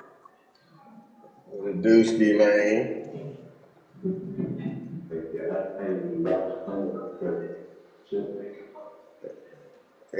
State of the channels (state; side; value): identical; both; correlation 1.00